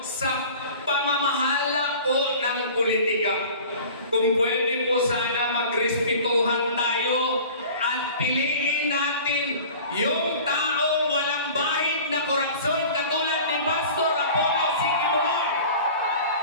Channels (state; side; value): inverted; both; correlation -0.42